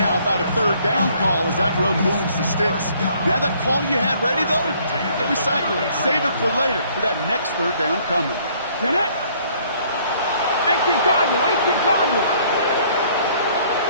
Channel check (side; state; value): both; inverted; correlation -0.61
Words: about a third down call as that run moves the sticks. Now that call you had ready, though, don't recycle it. Save it for later for that next third down coming. Get it? 18 Cardinal, 18 Cardinal.